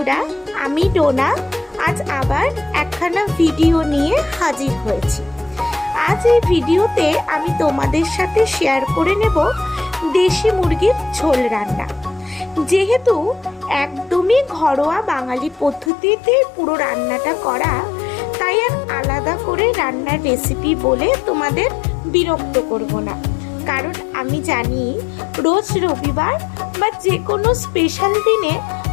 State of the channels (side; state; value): right; drops out; at 15.9 s